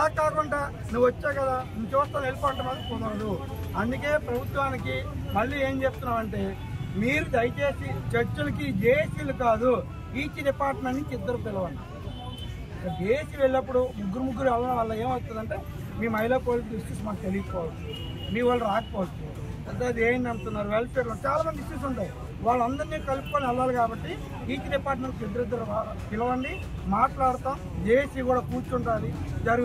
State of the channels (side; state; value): both; identical; correlation 1.00